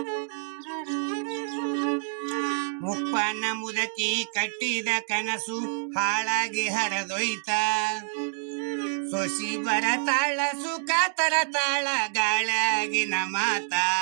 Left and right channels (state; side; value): silent; left; digital silence